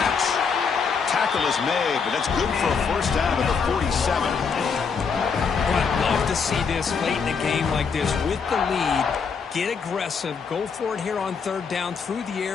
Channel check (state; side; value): quieter; right; 5.7 dB